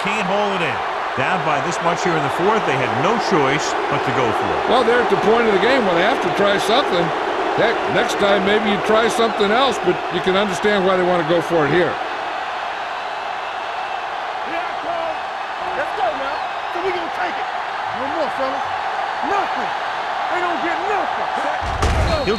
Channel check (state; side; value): identical; both; correlation 1.00